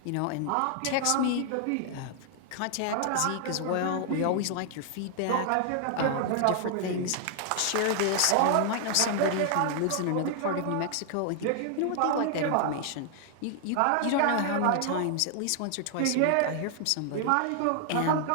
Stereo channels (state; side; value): different; both; correlation 0.00